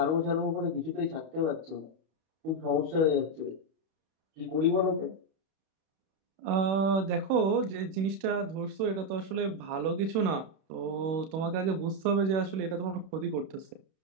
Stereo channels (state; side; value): late; left; 31 ms